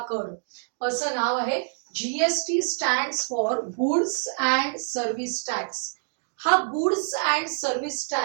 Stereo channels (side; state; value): left; silent; digital silence